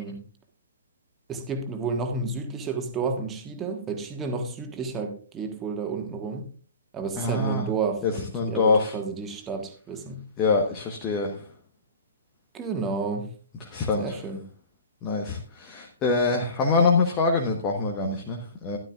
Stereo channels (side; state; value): both; inverted; correlation -0.34